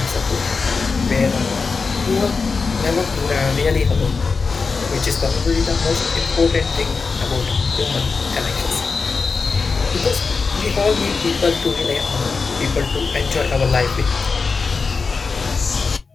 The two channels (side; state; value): right; quieter; 4.7 dB